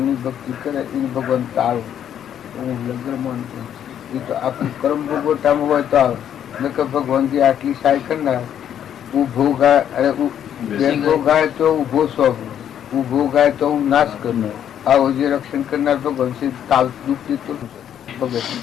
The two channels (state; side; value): quieter; right; 9.7 dB